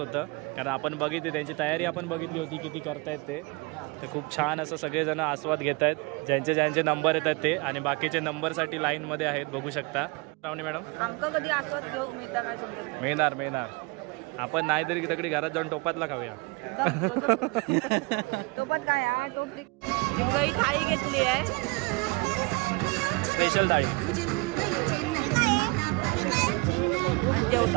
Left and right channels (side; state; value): left; quieter; 27.6 dB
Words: कारण आपण बघितली त्यांची तयारी, आपण बघितली होती किती करतायत ते. तर खूप छान असं सगळेजण आस्वाद घेत आहेत. ज्यांचे नंबर येतात ते आणि बाकीचे नंबरसाठी लाईनमध्ये आहेत बघू शकता. श्रावणी मॅडम आमका कधी आस्वाद घेऊ मिळता काय समजत? मिळणार. आपण नाही तरी तिकडे घरात जाऊन टोपातला खाऊया. टोपात काय हा टोपली थाळी घेतली आहे, स्पेशल थाळी. आणि